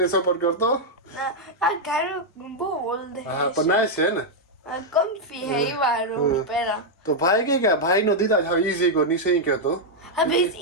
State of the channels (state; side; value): normal; both; correlation -0.02